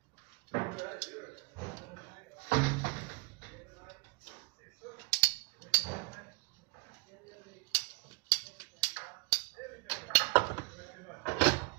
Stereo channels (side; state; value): left; quieter; 31.7 dB